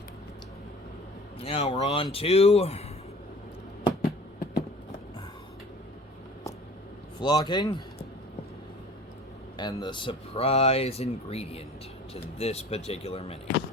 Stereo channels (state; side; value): normal; both; correlation 0.45